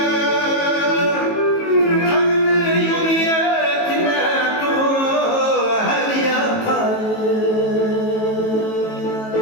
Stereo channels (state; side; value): late; right; 18 ms